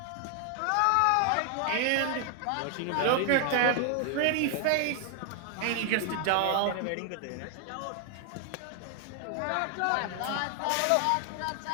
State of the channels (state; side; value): different; both; correlation 0.00